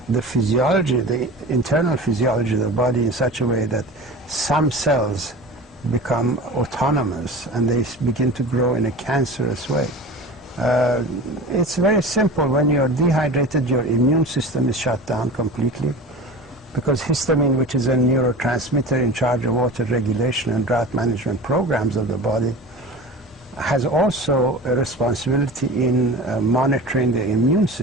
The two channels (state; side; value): normal; both; correlation 0.34